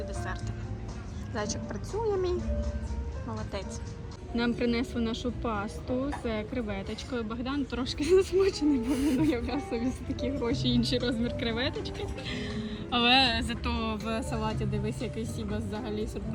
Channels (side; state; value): both; identical; correlation 1.00